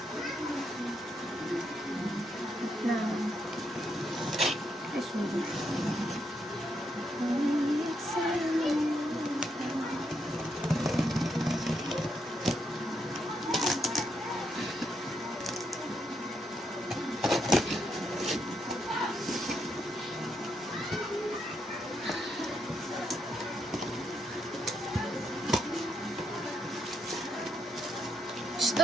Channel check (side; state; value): both; normal; correlation 0.79